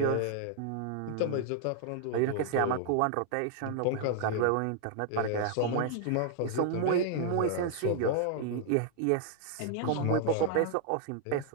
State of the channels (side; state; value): both; different; correlation 0.00